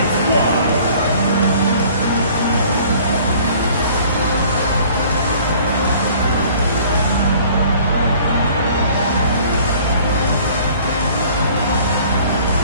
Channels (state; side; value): inverted; both; correlation -0.52